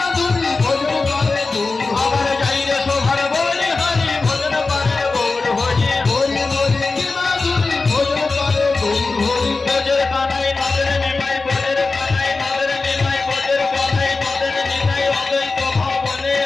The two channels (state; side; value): quieter; right; 3.9 dB